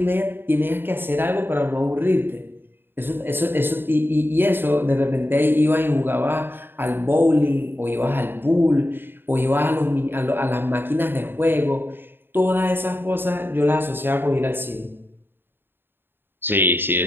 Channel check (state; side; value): late; left; 0.10 ms